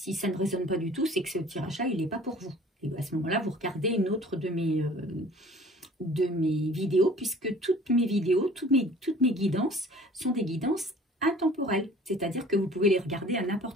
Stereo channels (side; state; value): both; normal; correlation 0.49